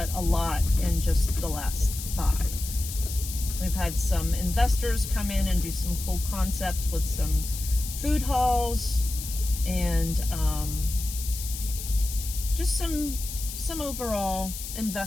a lot in just the last 5. We've had some investors come in and do some cool concept with some food halls and just some overall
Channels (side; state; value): left; noise; hiss, 9 dB below the sound